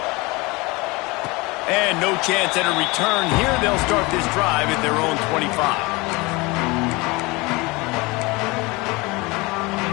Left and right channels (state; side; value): quieter; right; 24.4 dB